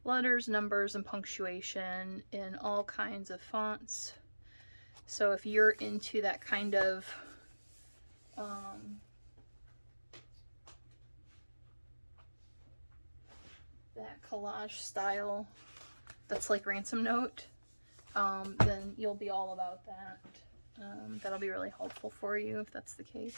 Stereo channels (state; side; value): inverted; both; correlation -1.00